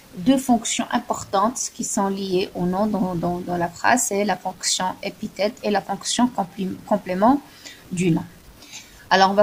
deux fonctions importantes qui sont liées au nom dans la phrase, c'est la fonction épithète et la fonction complément du nom. Alors, on va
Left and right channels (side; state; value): both; identical; correlation 1.00